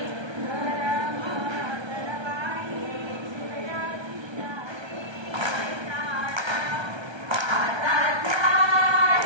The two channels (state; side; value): late; left; 1.3 ms